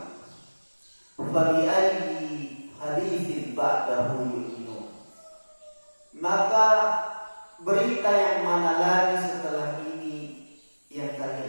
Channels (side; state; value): both; inverted; correlation -1.00